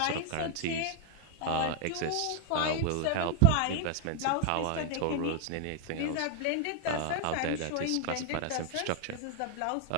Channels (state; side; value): different; both; correlation 0.00